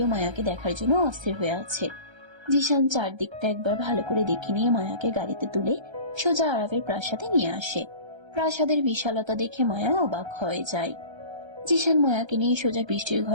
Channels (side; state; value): left; late; 1.3 ms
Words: মায়াকে দেখার জন্য অস্থির হয়ে আছে। জিশান চারদিকটা একবার ভালো করে দেখে নিয়ে মায়াকে গাড়িতে তুলে সোজা আরবের প্রাসাদে নিয়ে আসে। প্রাসাদের বিশালতা দেখে মায়া অবাক হয়ে যায়। জিশান মায়াকে নিয়ে সোজা বৃষ্টির